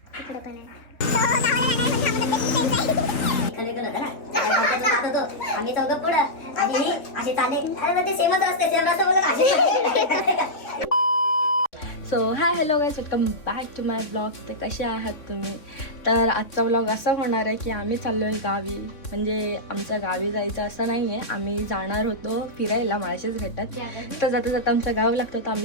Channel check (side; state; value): right; late; 3.6 ms